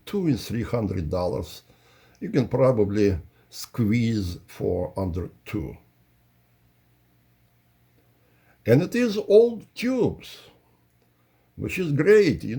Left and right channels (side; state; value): both; identical; correlation 1.00